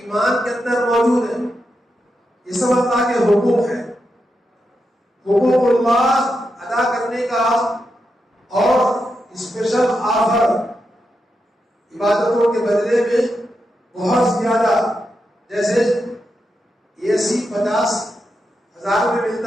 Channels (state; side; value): normal; both; correlation 0.86